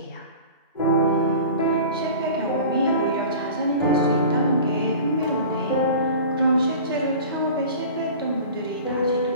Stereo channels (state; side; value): inverted; both; correlation -0.39